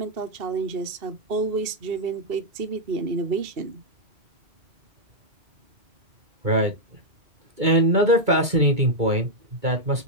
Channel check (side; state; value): left; late; 2.3 ms